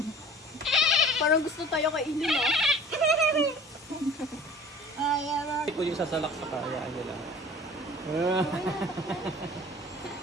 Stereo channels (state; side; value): normal; both; correlation 0.45